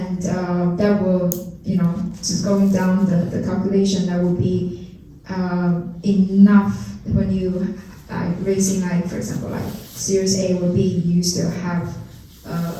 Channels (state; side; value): identical; both; correlation 1.00